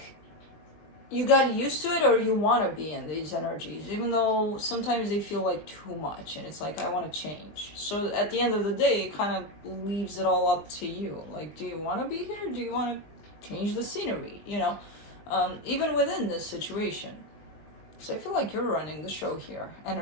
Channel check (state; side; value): late; right; 20 ms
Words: you got used to it, or you want to be in these energies, even though sometimes they feel like too much, and it's like I want to change. So at the end of the day, it kind of leaves it all up to you. Like, do you want to be here? Do you want to change the scenery? You know. Even within this situation. So I feel like you're running the show here,